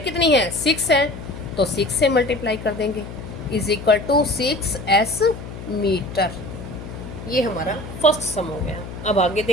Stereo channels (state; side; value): noise; left; hum, 11 dB below the sound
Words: कितनी है 6 है तो 6 से मल्टीप्लाई कर देंगे, is equal to 6s metre. ये हमारा फर्स्ट सम हो गया। अब आगे